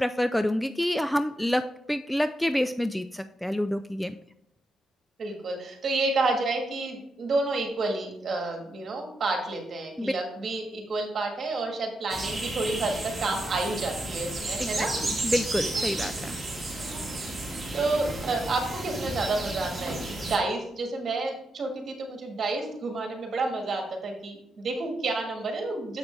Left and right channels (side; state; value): both; normal; correlation 0.85